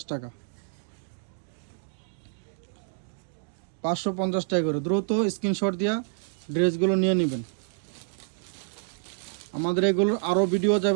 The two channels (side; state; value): left; silent; digital silence